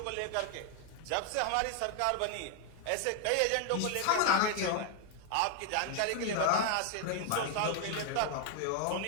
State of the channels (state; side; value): different; both; correlation 0.00